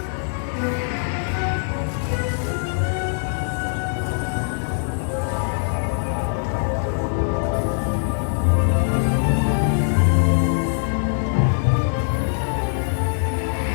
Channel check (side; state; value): right; silent; digital silence